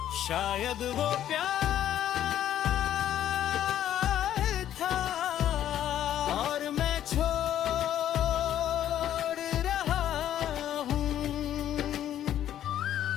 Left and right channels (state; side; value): quieter; right; 11.3 dB